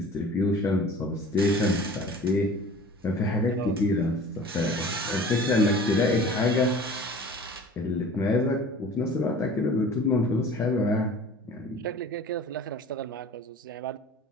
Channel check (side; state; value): both; normal; correlation 0.44